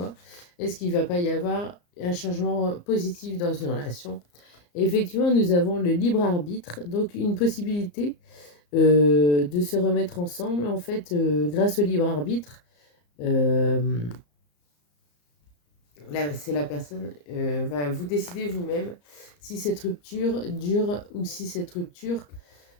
est-ce qu'il ne va pas y avoir un changement positif dans une relation? Et effectivement, nous avons le libre arbitre, donc une possibilité de se remettre ensemble, en fait, grâce au libre arbitre. Là, c'est la personne, vous décidez vous-même si cette rupture dure ou si cette rupture,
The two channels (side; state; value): right; late; 34 ms